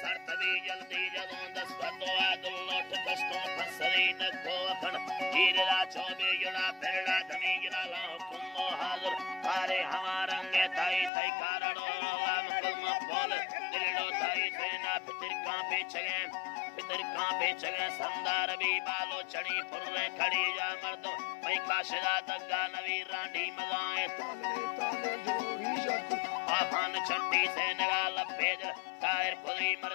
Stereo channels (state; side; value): drops out; right; at 11.1 s